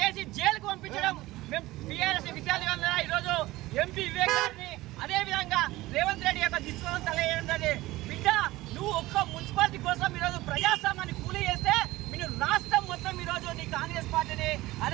జైలుకు పంపించడం మేము టీఆర్ఎస్ విద్యార్థులందరూ ఈరోజు ఎంపీ వివేక్ గారిని, అదేవిధంగా రేవంత్ రెడ్డి యొక్క దిశలో తెలియజేయడం. బిడ్డ, నువ్వు ఒక్క మున్సిపాలిటీ కోసం ఈరోజు ప్రజాస్వామ్యాన్ని కూలీ చేస్తే మీరు రాష్ట్రం మొత్తం ఈరోజు నీ కాంగ్రెస్ పార్టీని,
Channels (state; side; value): quieter; left; 18.3 dB